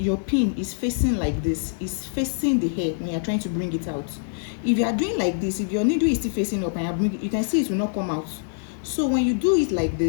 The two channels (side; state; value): right; silent; digital silence